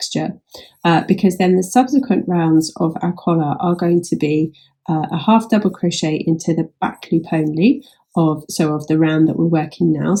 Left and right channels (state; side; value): identical; both; correlation 1.00